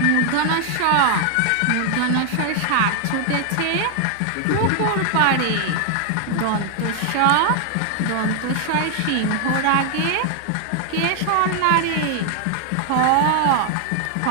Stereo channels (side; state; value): both; different; correlation 0.00